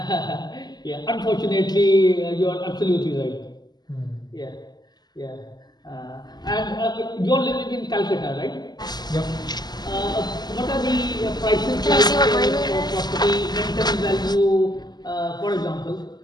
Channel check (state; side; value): late; right; 0.20 ms